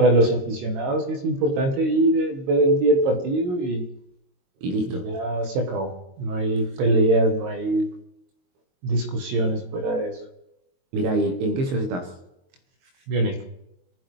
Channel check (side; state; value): left; late; 22 ms